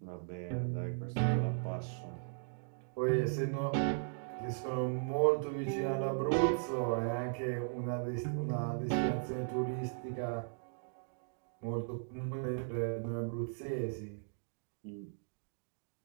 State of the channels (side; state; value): left; silent; digital silence